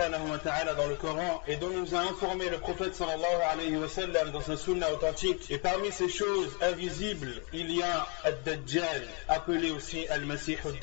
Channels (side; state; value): right; quieter; 35.0 dB